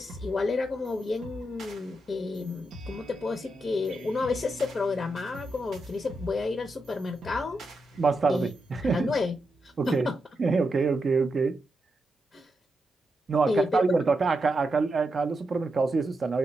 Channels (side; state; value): both; normal; correlation 0.85